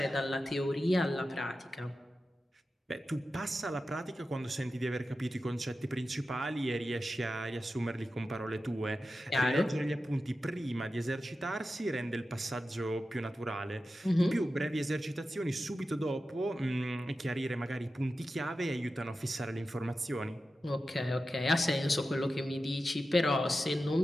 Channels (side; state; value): both; normal; correlation 0.92